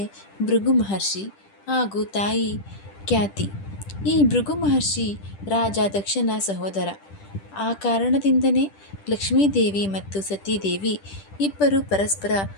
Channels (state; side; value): late; right; 10 ms